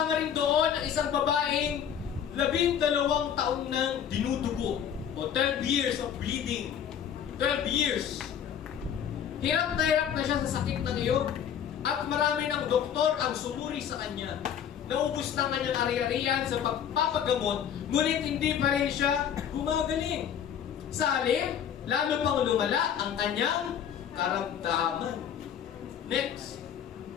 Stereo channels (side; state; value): right; quieter; 8.9 dB